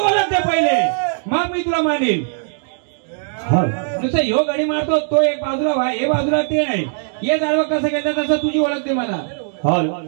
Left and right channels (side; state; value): left; silent; digital silence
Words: दे पहिले मग मी तुला मानेल. नुसतं ह्यो घडी मारतो तो एक बाजूला व्हा हे बाजूला ते नाही. हे जाळवं कसं घेतात तसं तुझी ओळख दे मला. हो